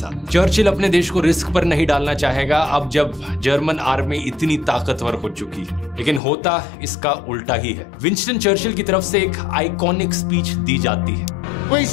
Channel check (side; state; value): right; drops out; at 6.2 s